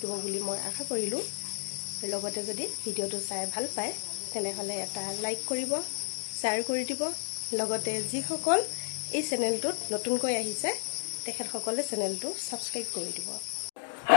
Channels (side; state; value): right; silent; digital silence